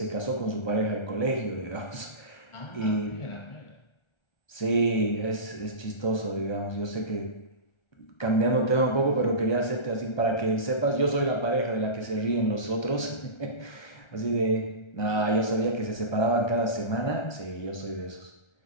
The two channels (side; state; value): right; late; 1.3 ms